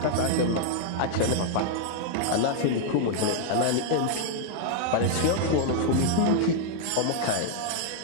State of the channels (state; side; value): different; both; correlation 0.00